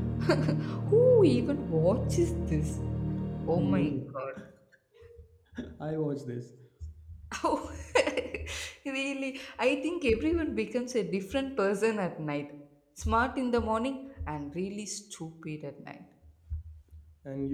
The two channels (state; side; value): identical; both; correlation 1.00